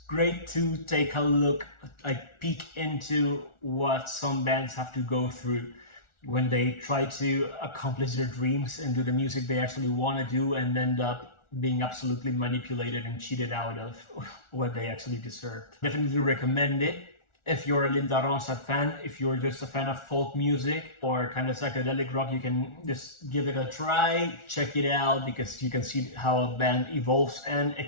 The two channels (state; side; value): late; right; 1.4 ms